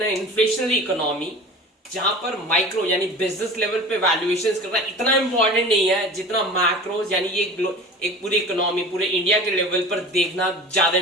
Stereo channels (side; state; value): both; normal; correlation 0.38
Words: a inflationary economy जहां पर micro यानी business level पे वैल्यूएशंस करना इतना इंपॉर्टेंट नहीं है जितना मैक्रोज यानी ये एक पूरी इकोनॉमी पूरे इंडिया के लेवल पर देखना ज्यादा